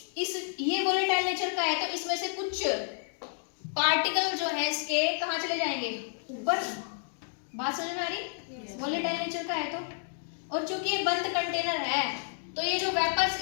ये वोलेटाइल नेचर का है, तो इसमें से कुछ पार्टिकल जो है इसके कहाँ चले जाएंगे, ऊपर। बात समझ में आ रही, वोलेटाइल नेचर का है तो। और चूंकि ये बंद कंटेनर है, तो ये जो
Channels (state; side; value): silent; right; digital silence